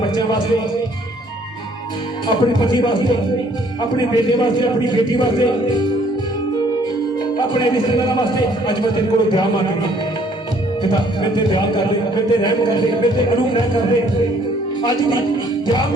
वास्ते अपने पति वास्ते अपने बेटे वास्ते अपनी बेटी वास्ते अपने रिश्तेदारों वास्ते आज मैं तेरे को दुआ मांग रही हूं पिता मैं तेरे दुआ कर दे मैं तेरे रहम कर दे मैं तेरे अनुग्रह कर दे आज भी दुआ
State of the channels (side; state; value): both; normal; correlation 0.62